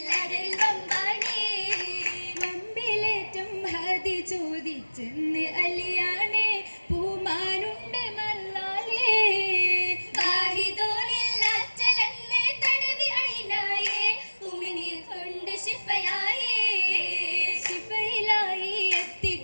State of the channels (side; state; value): both; inverted; correlation -1.00